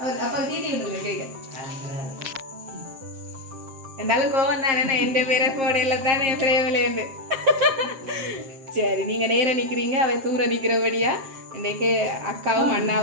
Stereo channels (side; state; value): left; late; 7.5 ms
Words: அப்பா தீட்டி விட்டுருங்க கேட்க இருந்தாலும் கோவம் தானே என் பேரை போடையில தானே என் பிரேமிலேருந்து சரி நீங்க நேரம் நிக்கிறீங்க அவை தூர நிக்கிறபடியா இன்றைக்கு அக்காவும்